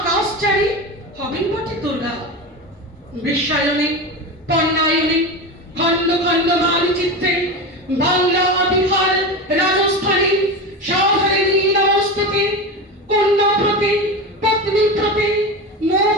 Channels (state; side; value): normal; both; correlation 0.23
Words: হবেন বটে দুর্গা। বিশ্বায়নে পণ্যায়নে খণ্ড খণ্ড মানচিত্রে বাংলা বিহার রাজস্থানে সাধারণী নমস্তুতে। কন্যা প্রতি পত্নী প্রতি মোহ